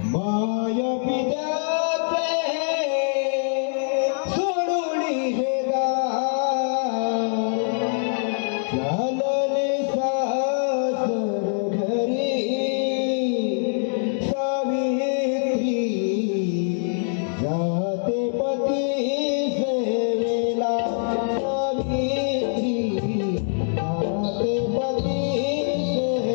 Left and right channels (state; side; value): silent; right; digital silence